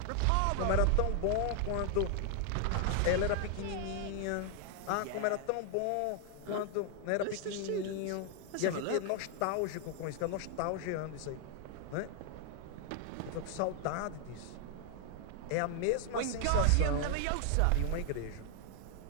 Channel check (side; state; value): both; different; correlation 0.00